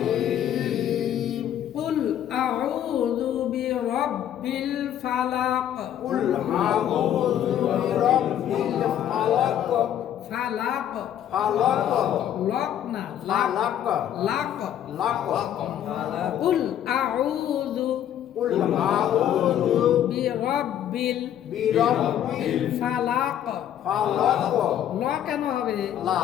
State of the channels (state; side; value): quieter; right; 10.5 dB